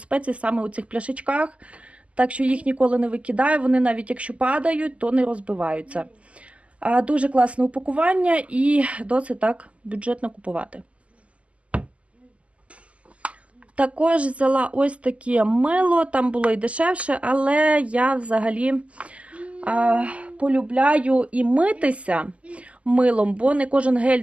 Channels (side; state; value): left; late; 0.063 ms